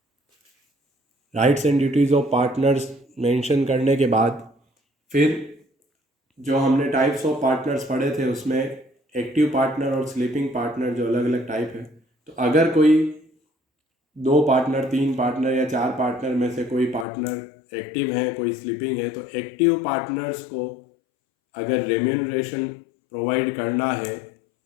rights and duties of partners mention करने के बाद फिर जो हमने टाइप्स ऑफ पार्टनर्स पढ़े थे उसमें एक्टिव पार्टनर और स्लीपिंग पार्टनर जो अलग अलग टाइप है। तो अगर कोई 2 पार्टनर, 3 पार्टनर या 4 पार्टनर में से कोई पार्टनर एक्टिव है, कोई स्लीपिंग है, तो एक्टिव पार्टनर्स को अगर रेम्यूनरेशन प्रोवाइड करना है,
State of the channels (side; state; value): right; drops out; at 17.1 s